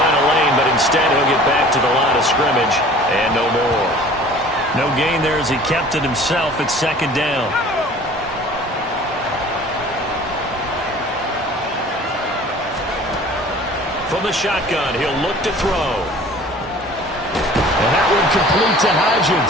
a lane, but instead he'll get back to the line of scrimmage and no more. No gain there as he kept it himself at second down. From the shotgun, he'll look to throw. And that one complete to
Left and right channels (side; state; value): both; normal; correlation 0.47